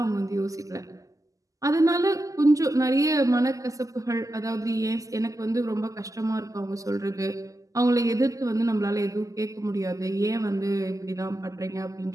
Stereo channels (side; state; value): left; late; 0.16 ms